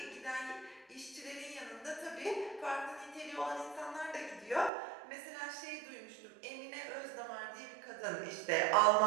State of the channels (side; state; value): left; drops out; at 4.7 s